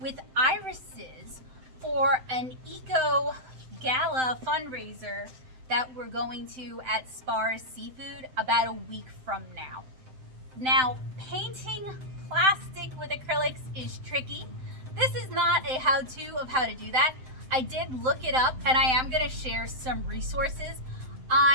irises for an eco gala fundraiser that we're going to at Splatters Seafood about a week from now. Now, painting plastic with acrylics is tricky. This is not a how-to of how to do that. I did look it up and I am going to share some resources.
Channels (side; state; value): left; late; 7.7 ms